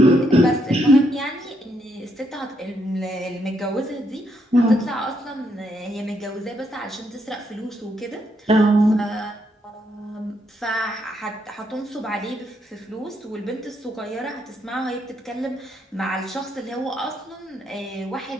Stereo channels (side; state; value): both; normal; correlation 0.76